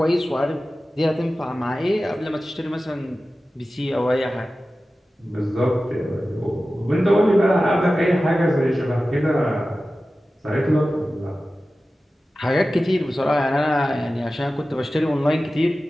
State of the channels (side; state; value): both; normal; correlation 0.95